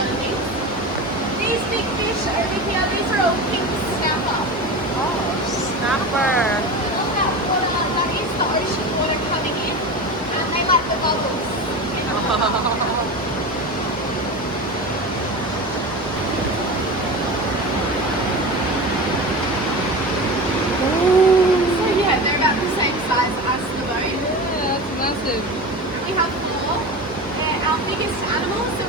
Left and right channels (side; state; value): both; normal; correlation 0.28